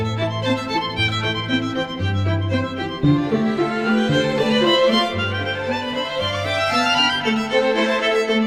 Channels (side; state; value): both; identical; correlation 1.00